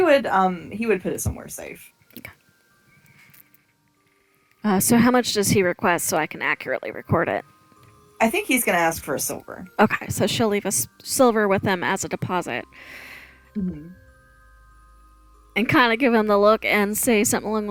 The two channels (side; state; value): both; identical; correlation 1.00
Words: would put it somewhere safe. So how much does he request so I can accurately record it? I think he's going to ask for a silver. Okay, so she'll leave a silver with him as a deposit. Mm-hmm. And kind of give him the look and say something along